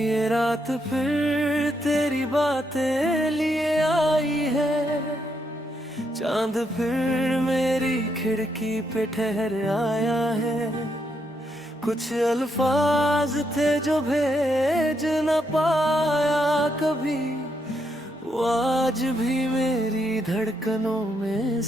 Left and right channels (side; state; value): both; normal; correlation 0.78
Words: रात फिर तेरी बातें लिए आई है, चांद फिर मेरी खिड़की पे ठहर आया है। कुछ अल्फाज थे जो भेज न पाया कभी, वो आज भी मेरी धड़कनों में